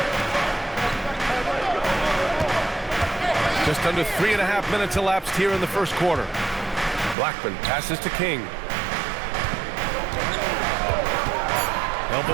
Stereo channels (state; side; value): drops out; left; at 7.2 s